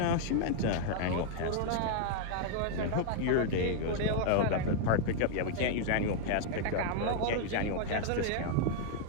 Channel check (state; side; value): different; both; correlation 0.00